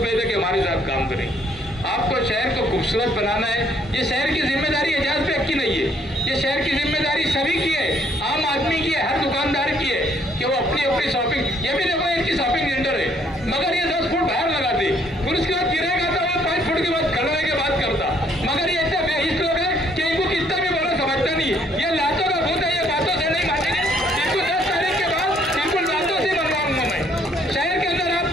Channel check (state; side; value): normal; both; correlation 0.66